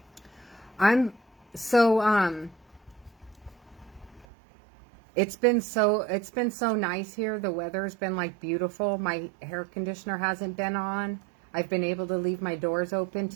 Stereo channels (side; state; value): left; drops out; at 4.2 s